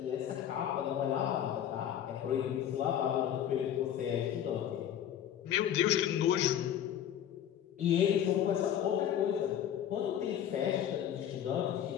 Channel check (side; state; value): right; quieter; 10.1 dB